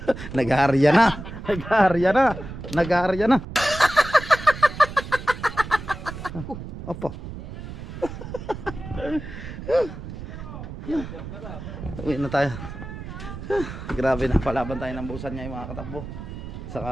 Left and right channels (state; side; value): noise; right; rumble, 10 dB below the sound